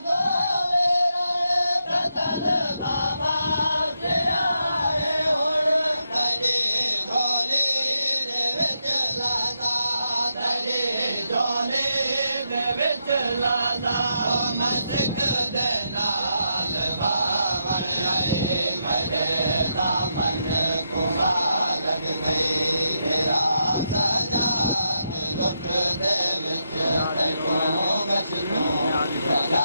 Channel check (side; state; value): both; inverted; correlation -0.82